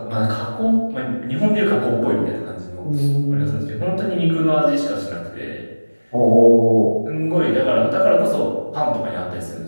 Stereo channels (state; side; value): inverted; both; correlation -1.00